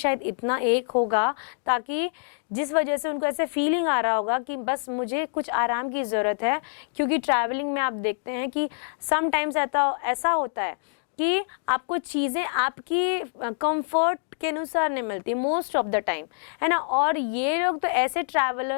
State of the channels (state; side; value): silent; right; digital silence